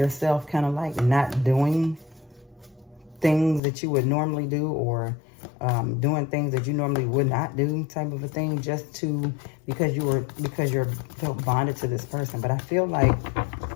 kind of like not doing things that you would normally do, or doing things that you normally would not do, type of a thing, just to because you're felt bonded to this person. But I feel like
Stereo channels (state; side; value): drops out; right; at 3.6 s